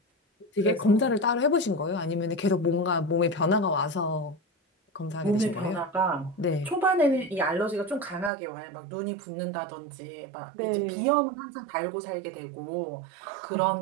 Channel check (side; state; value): left; drops out; at 8.3 s